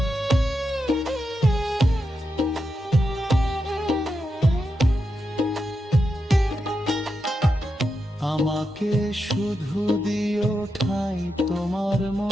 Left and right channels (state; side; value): normal; both; correlation 0.87